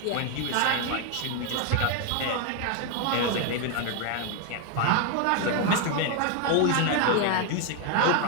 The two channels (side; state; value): both; different; correlation 0.01